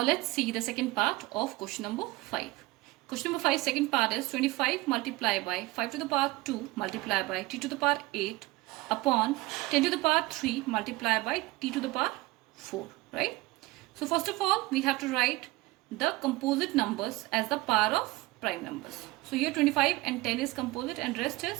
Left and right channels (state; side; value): quieter; left; 20.6 dB